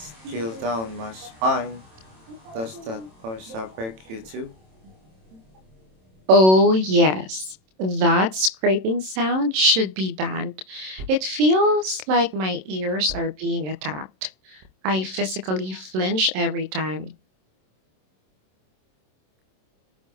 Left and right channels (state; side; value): late; left; 27 ms